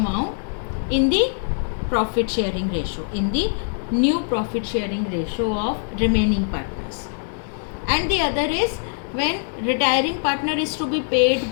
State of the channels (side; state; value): right; silent; 64 dB below the other